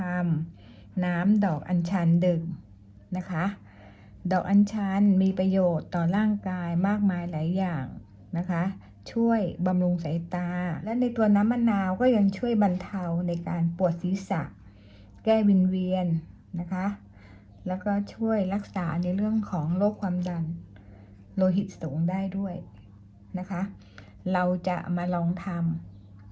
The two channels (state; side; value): identical; both; correlation 1.00